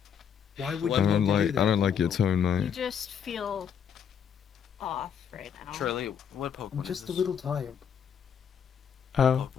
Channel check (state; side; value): quieter; right; 7.8 dB